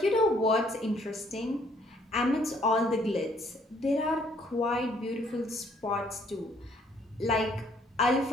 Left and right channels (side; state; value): both; normal; correlation 0.64